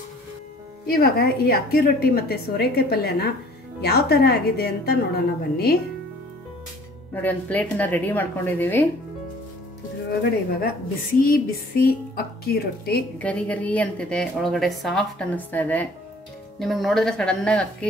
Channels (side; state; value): both; normal; correlation 0.53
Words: ಇವಾಗ ಈ ಅಕ್ಕಿ ರೊಟ್ಟಿ ಮತ್ತು ಸೋರೆಕಾಯಿ ಪಲ್ಯನ ಯಾವ ಥರ ಆಗಿದೆ ಅಂತ ನೋಡೋಣ ಬನ್ನಿ. ನೋಡಿ ಒಂದು ಪ್ಲೇಟನ್ನ ರೆಡಿ ಮಾಡ್ಕೊಂಡಿದ್ದೀವಿ. ಇದ್ರೊಳಗಡೆ ಇವಾಗ ಬಿಸಿ ಬಿಸಿ ಅಕ್ಕಿ ರೊಟ್ಟಿ ಗರಿ ಗರಿ ಅಂತಿದೆ, ಒಳಗಡೆ ಸಾಫ್ಟ್ ಅನ್ನಿಸ್ತಾ ಇದೆ. ನಿಮಗೆ ನೋಡಿದ್ರೆ ಸಡನ್ ಆಗಿ